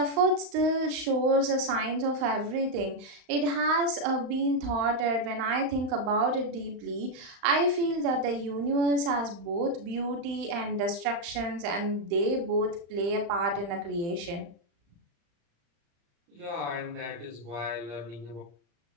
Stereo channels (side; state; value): left; late; 35 ms